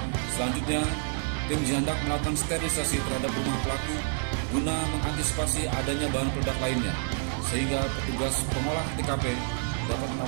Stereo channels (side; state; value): left; silent; 59 dB below the other